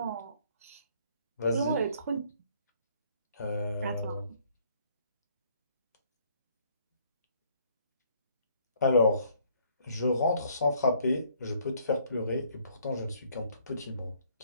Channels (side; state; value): both; inverted; correlation -0.63